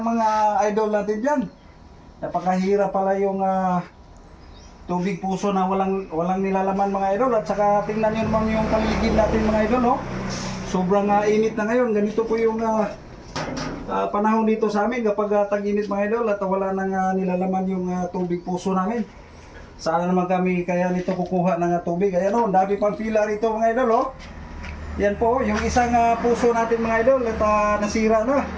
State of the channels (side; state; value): both; identical; correlation 1.00